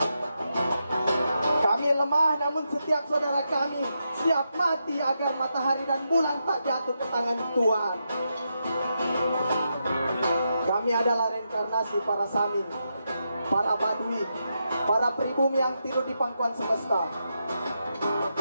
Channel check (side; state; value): both; inverted; correlation -0.84